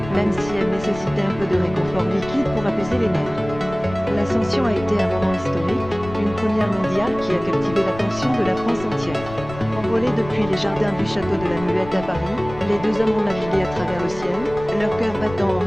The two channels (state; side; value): noise; left; rumble, 14 dB below the sound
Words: même si elle nécessitait un peu de réconfort liquide pour apaiser les nerfs. L'ascension a été un moment historique, une première mondiale qui a captivé l'attention de la France entière. Envolés depuis les jardins du château de la Muette à Paris, les deux hommes ont navigué à travers le ciel, leur cœur battant en